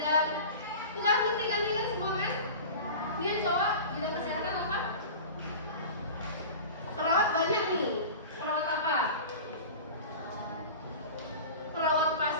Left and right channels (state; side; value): inverted; both; correlation -0.34